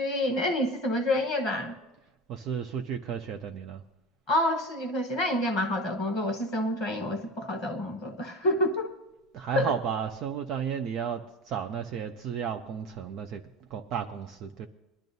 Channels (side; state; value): both; normal; correlation 0.31